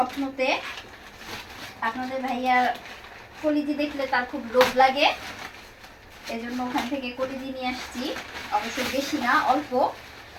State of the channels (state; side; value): identical; both; correlation 1.00